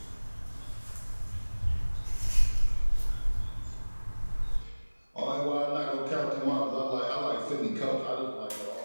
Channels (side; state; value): both; inverted; correlation -1.00